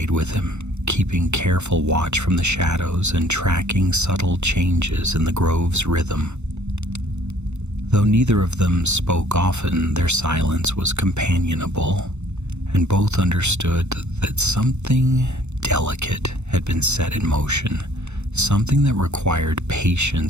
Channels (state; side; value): late; left; 0.82 ms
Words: with him, keeping careful watch from the shadows and tracking subtle changes in the grove's rhythm. Though neither of them spoke often, their silence was companionable, and both understood that something delicate had been set in motion, something that required